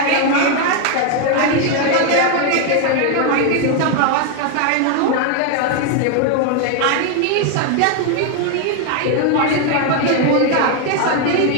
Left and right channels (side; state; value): both; different; correlation 0.01